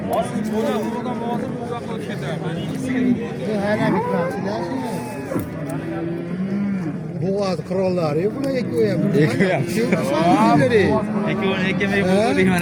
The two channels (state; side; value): identical; both; correlation 1.00